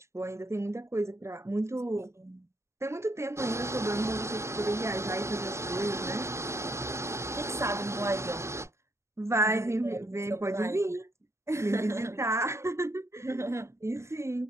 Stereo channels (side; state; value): left; late; 0.13 ms